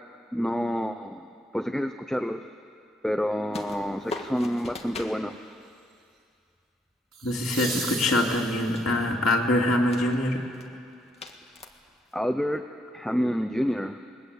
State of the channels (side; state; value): both; normal; correlation 0.76